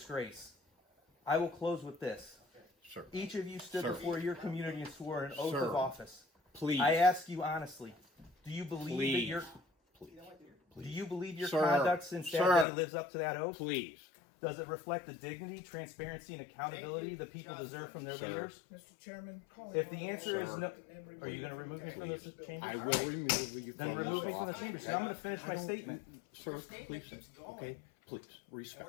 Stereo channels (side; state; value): right; drops out; at 12.7 s